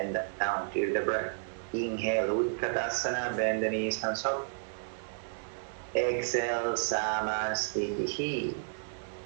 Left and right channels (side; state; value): left; silent; digital silence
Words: down, feel the breath. Inhale, Utkatasana, bend the knees, hands up. Exhale, Samasthiti.